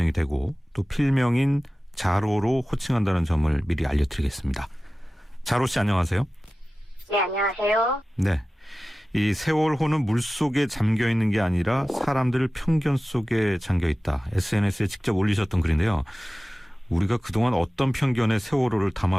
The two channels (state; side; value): normal; both; correlation 0.96